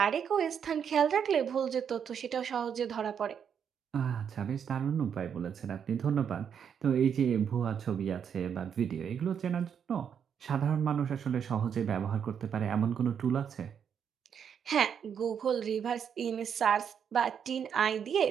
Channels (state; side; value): quieter; left; 7.8 dB